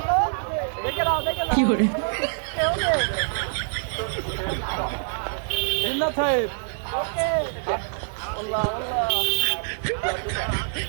কি করে জিন্নাত সাহেব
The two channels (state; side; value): silent; left; digital silence